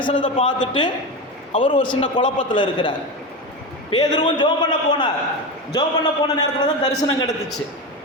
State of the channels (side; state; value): both; normal; correlation 0.20